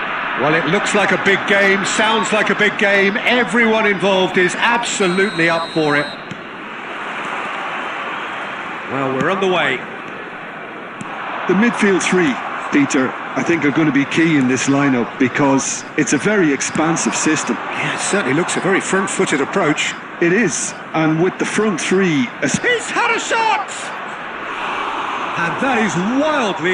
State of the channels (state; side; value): identical; both; correlation 1.00